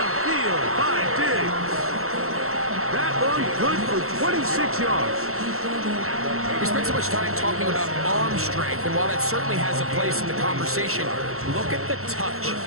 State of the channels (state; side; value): late; left; 0.63 ms